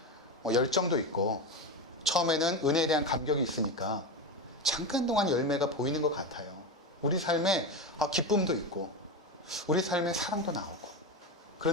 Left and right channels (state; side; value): normal; both; correlation 0.18